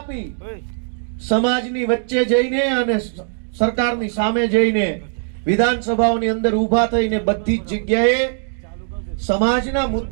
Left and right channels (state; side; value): silent; left; 66 dB below the other